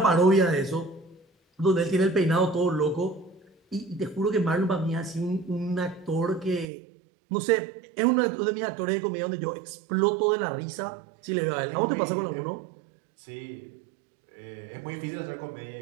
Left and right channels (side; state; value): left; drops out; at 6.7 s